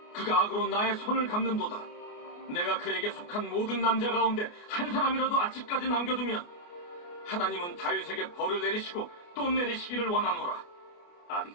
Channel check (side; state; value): right; late; 29 ms